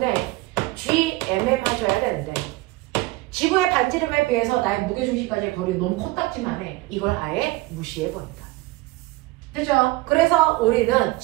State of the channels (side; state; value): left; quieter; 20.2 dB